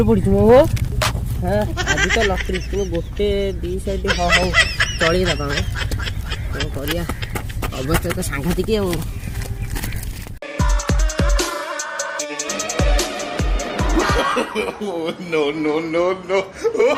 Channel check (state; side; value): identical; both; correlation 1.00